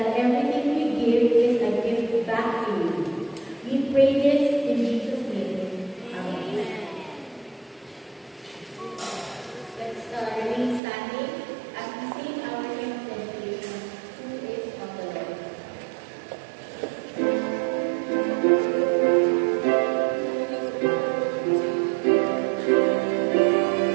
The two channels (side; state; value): left; drops out; at 10.8 s